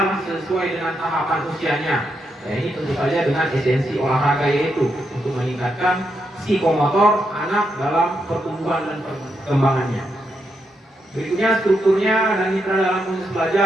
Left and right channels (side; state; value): both; normal; correlation 0.82